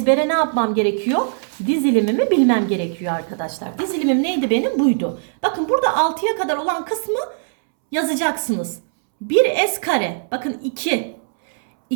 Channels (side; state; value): left; silent; 66 dB below the other